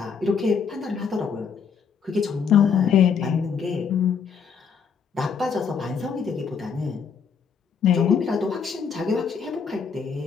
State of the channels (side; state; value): right; quieter; 6.3 dB